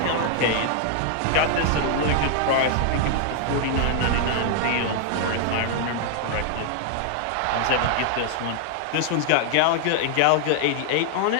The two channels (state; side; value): different; both; correlation 0.00